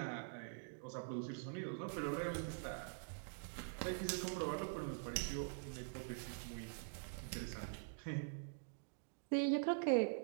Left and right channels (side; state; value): left; silent; digital silence